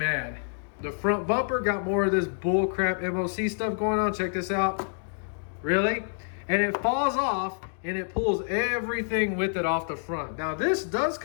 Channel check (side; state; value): right; silent; 60 dB below the other